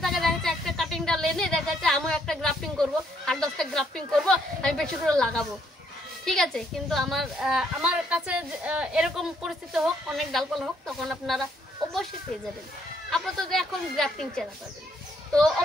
থাকে, দেখা যাচ্ছে একটা কাটিং ডাল এনে দেখা যাচ্ছে আমি একটা গ্রাফটিং করবো, 8-10টা গ্রাফটিং করবো, আমি বেশি করে লাগাবো, ঠিক আছে। কিন্তু আমার কাছে এরকম পরিস্থিতি হোক, অনেক ডালপালা হোক, তখন আপনারা অবশ্যই পেয়ে যাবেন। আপাতত এখন গ্রাফটিং চারা পাবেন। তো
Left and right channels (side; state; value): both; normal; correlation 0.70